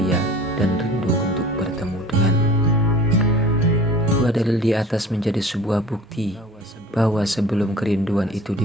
dan rindu untuk bertemu denganmu. Dua dalil di atas menjadi sebuah bukti bahwa sebelum kerinduan itu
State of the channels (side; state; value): both; normal; correlation 0.43